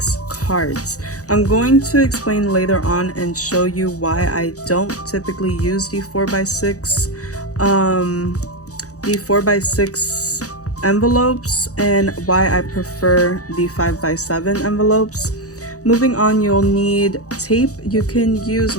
cards. I'm going to explain later on and show you why I don't typically use the 4x6 envelopes and why I prefer the 5x7 envelopes. Moving on, you'll need tape. You can use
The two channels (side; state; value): right; late; 0.66 ms